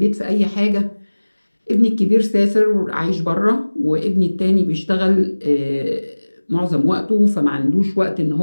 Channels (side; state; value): both; inverted; correlation -1.00